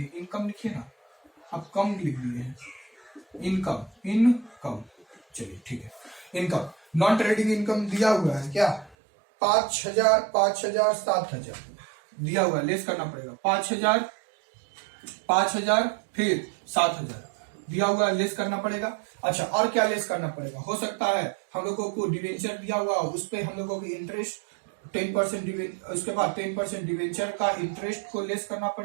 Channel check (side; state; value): left; drops out; at 9.0 s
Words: इनकम लिखिए ना, आप कम लिख दिए हैं, इनकम चलिए ठीक है, इनकम नॉन ट्रेडिंग इनकम दिया हुआ है क्या, 5,000 5,000 7,000 दिया हुआ है, लेस करना पड़ेगा, 5,000 फिर 7,000 दिया हुआ है, लेस करना पड़ेगा। अच्छा और क्या लेस करना पड़ेगा, हो सकता है हम लोगों को डिवेंचर दिया हुआ, उस पर हम लोगों की इंटरेस्ट 10%, उसके बाद 10% डिवेंचर का इंटरेस्ट को लेस करना